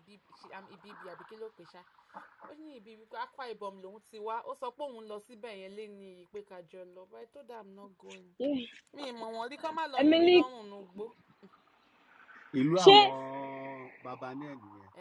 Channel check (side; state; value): both; identical; correlation 1.00